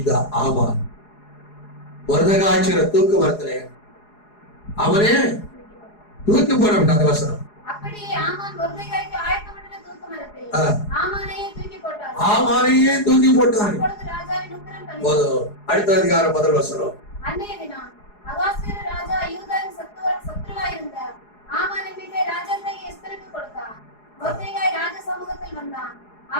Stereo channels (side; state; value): right; late; 4.8 ms